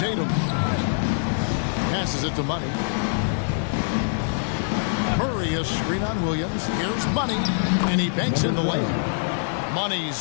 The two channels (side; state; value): right; silent; 62 dB below the other